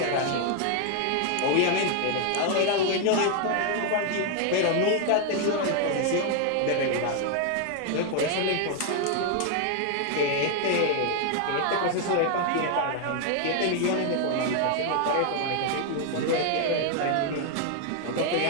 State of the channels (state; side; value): different; both; correlation 0.00